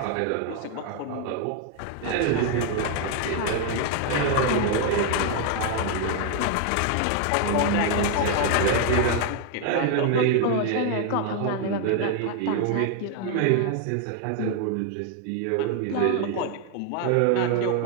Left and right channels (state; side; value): different; both; correlation 0.00